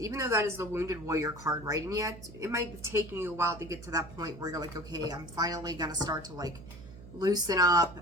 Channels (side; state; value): right; noise; hum, 16 dB below the sound